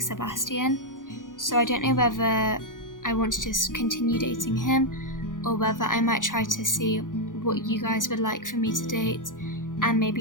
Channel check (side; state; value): right; late; 0.89 ms